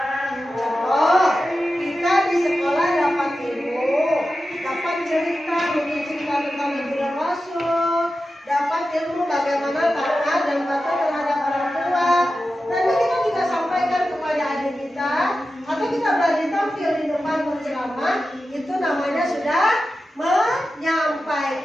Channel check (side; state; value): both; normal; correlation 0.93